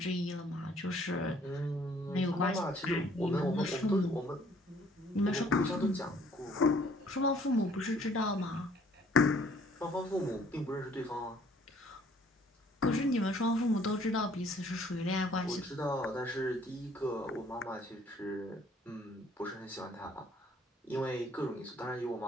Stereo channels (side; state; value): both; normal; correlation 0.60